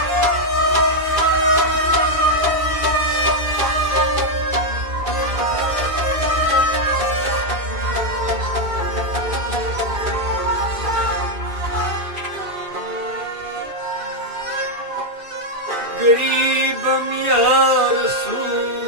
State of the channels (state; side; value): late; left; 2.4 ms